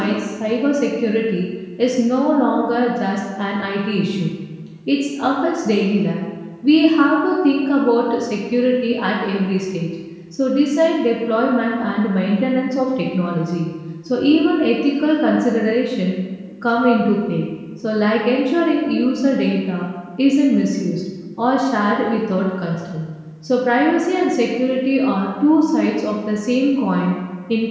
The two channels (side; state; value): both; identical; correlation 1.00